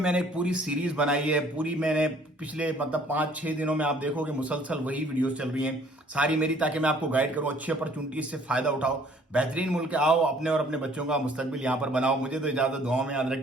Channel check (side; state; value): both; normal; correlation 0.58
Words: एक पूरी सीरीज बनाई है। पूरी मैंने पिछले मतलब 5-6 दिनों में आप देखोगे मुसलसल वही वीडियोस चल रही हैं सारी मेरी, ताकि मैं आपको गाइड करूं। अच्छी अपॉर्चुनिटी से फायदा उठाओ, बेहतरीन मुल्क आओ, अपने और अपने बच्चों का मुस्तकबिल यहाँ पर बनाओ। मुझे तो इजाजत, दुआओं में याद